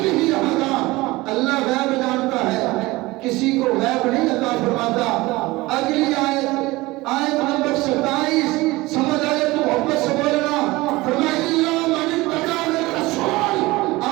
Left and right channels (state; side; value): quieter; left; 20.7 dB